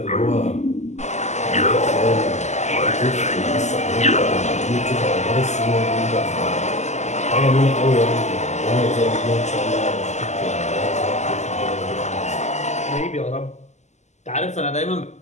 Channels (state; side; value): late; right; 0.33 ms